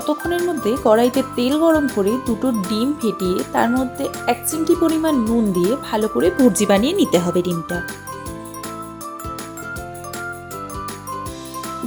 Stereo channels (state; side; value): identical; both; correlation 1.00